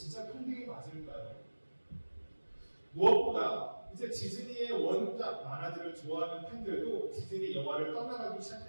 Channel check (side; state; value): both; inverted; correlation -1.00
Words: 평등이 맞을까요? 무엇보다 이제 디즈니의 원작 만화들을 좋아하는 팬들도 디즈니 영화를 떠나가기